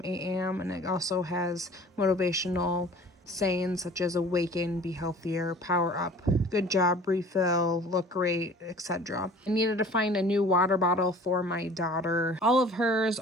8 a.m. and it also has motivational sayings such as awaken, be healthier, power up, good job, refill, look great, etc. I needed to find a new water bottle for my daughter. All of hers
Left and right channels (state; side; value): normal; both; correlation 0.47